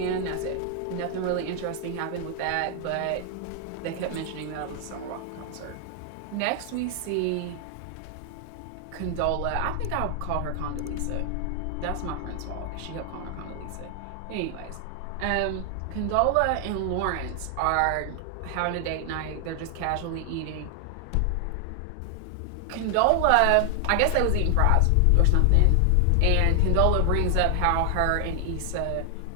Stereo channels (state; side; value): different; both; correlation 0.00